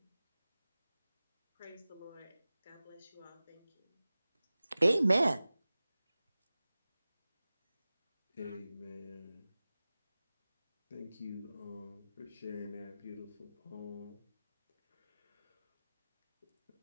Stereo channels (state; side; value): inverted; both; correlation -0.97